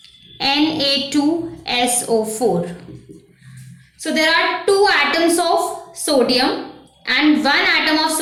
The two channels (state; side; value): identical; both; correlation 1.00